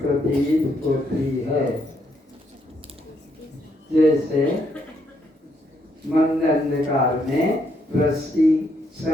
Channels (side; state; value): both; normal; correlation 0.74